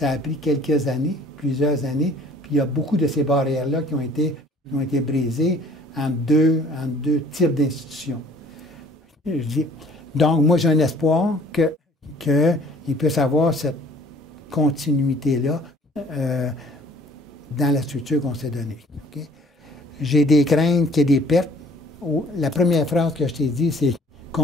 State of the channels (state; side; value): normal; both; correlation 0.55